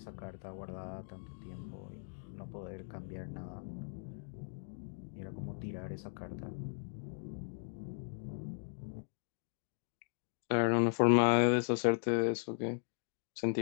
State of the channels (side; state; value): right; silent; digital silence